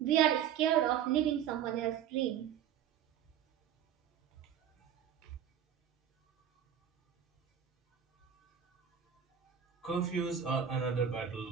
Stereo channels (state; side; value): quieter; left; 9.1 dB